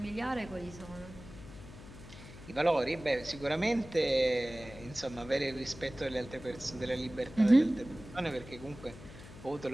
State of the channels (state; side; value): noise; left; hum, 16 dB below the sound